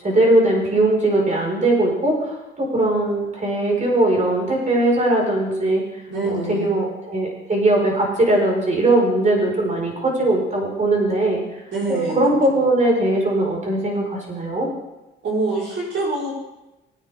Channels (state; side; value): normal; both; correlation 0.56